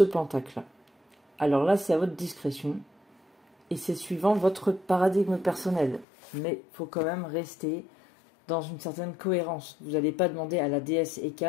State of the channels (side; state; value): right; drops out; at 6.1 s